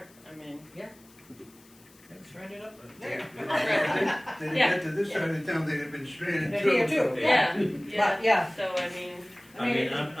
I mean. yeah. It's stranded up But there. They didn't get to this side of town, they'd have been stranded They're too. here too, yeah. But, yeah, So, I mean, I mean,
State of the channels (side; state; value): left; noise; hiss, 27 dB below the sound